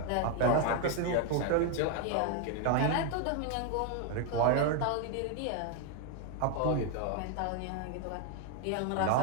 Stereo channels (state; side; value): different; both; correlation 0.01